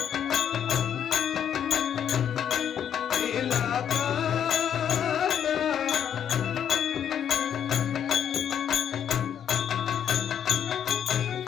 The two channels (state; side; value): quieter; right; 9.0 dB